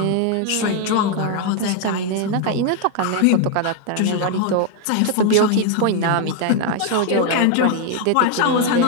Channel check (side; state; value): both; different; correlation 0.00